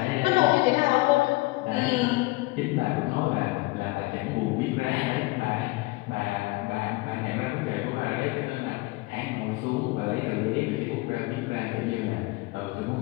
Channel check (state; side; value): quieter; right; 22.6 dB